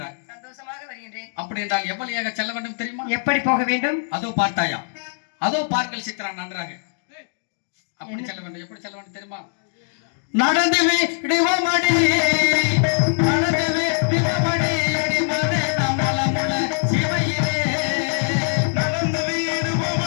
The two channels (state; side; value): silent; right; digital silence